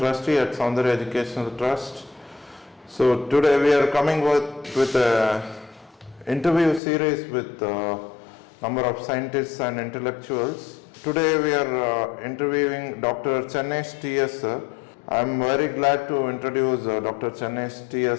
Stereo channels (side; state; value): right; drops out; at 6.8 s